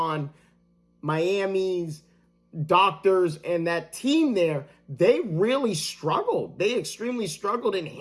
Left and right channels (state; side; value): identical; both; correlation 1.00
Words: Miami's doctors and that team there. They really struggled. They extremely struggled in